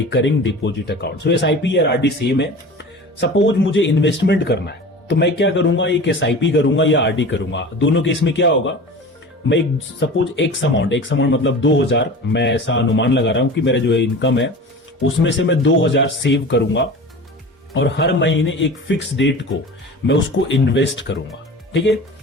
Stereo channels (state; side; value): normal; both; correlation 0.36